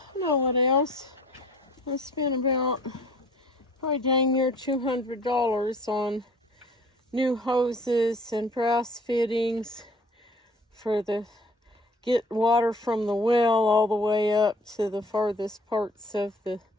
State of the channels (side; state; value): both; normal; correlation 0.52